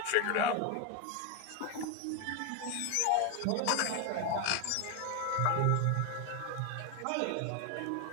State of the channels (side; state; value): both; different; correlation 0.01